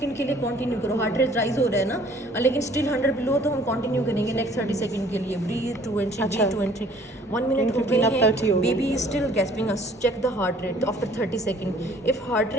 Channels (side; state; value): both; normal; correlation 0.56